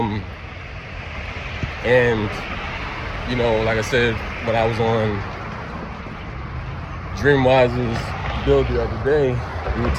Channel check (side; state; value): both; identical; correlation 1.00